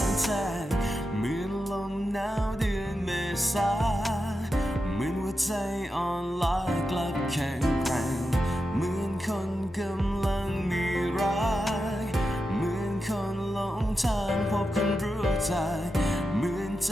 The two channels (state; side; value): normal; both; correlation 0.89